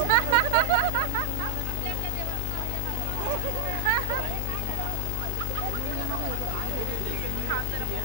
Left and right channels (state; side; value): different; both; correlation 0.00